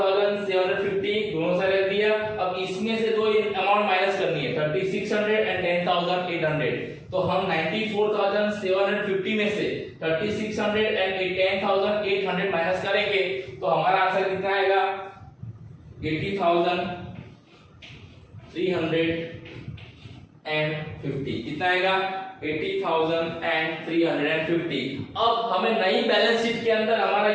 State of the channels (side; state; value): both; identical; correlation 1.00